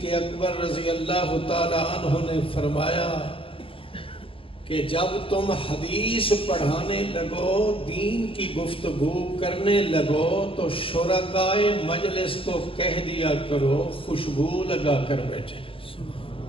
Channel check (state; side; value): late; right; 0.26 ms